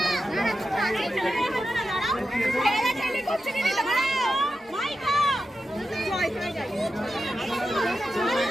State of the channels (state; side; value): normal; both; correlation 0.90